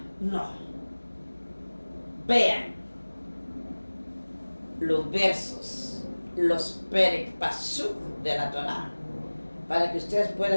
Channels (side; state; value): both; inverted; correlation -1.00